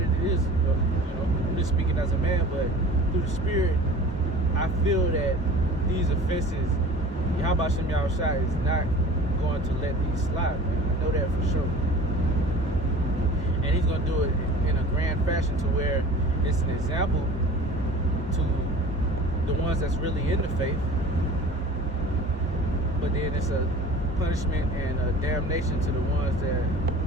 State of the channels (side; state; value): both; normal; correlation 0.42